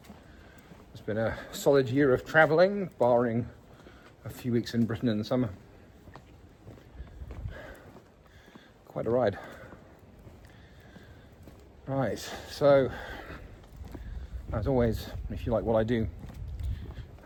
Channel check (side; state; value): both; identical; correlation 1.00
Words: It's been a solid year of travelling, barring a few weeks in Britain in the summer. Quite a ride. Right, so as always, if you like what I do